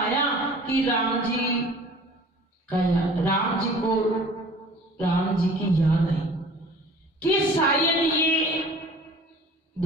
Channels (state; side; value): normal; both; correlation 0.46